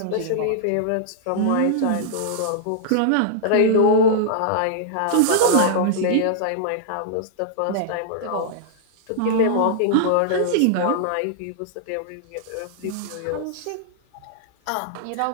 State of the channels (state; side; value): different; both; correlation -0.01